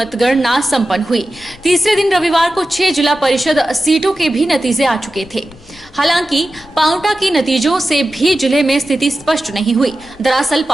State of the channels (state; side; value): noise; left; rumble, 24 dB below the sound